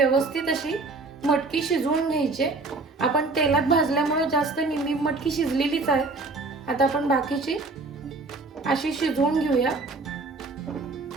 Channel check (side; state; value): left; quieter; 3.6 dB